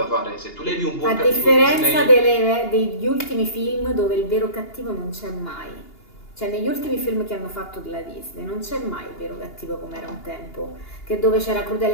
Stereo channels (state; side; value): late; right; 2.8 ms